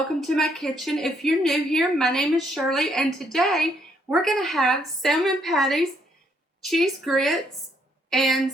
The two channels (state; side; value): normal; both; correlation 0.71